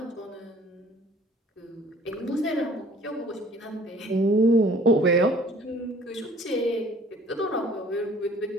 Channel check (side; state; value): both; normal; correlation 0.53